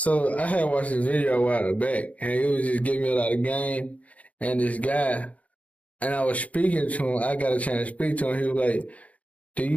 watched this video a while back, and it was just giving me a lot of game. And this guy, and I was speaking to him. I got a chance to speak to him. He was like,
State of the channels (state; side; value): late; right; 0.068 ms